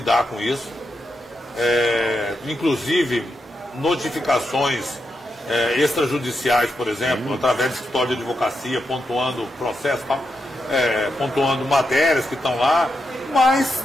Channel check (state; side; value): normal; both; correlation 0.85